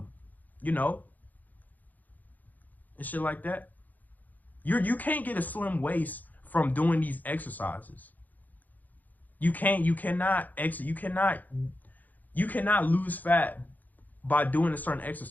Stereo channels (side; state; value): right; late; 0.082 ms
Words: you know, and shit like that. You can't get a slim waist from doing these exercises. You cannot lose fat by doing a certain